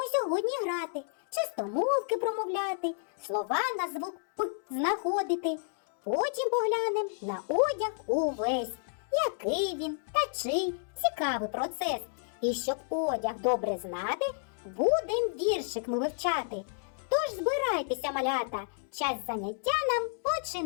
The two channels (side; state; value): right; silent; digital silence